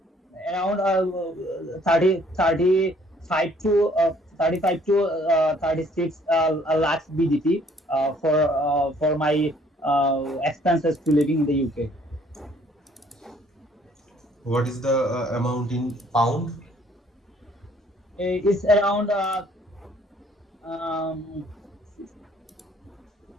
around 35 to 36 lakhs BGT for my expenses to living in the UK. What is the amount in pound? It's around um,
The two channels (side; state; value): both; normal; correlation 0.61